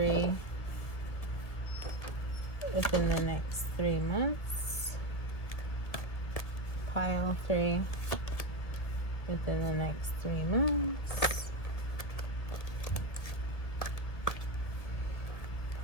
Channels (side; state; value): right; late; 1.6 ms